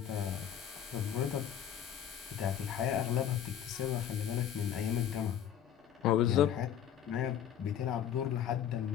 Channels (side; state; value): right; quieter; 9.6 dB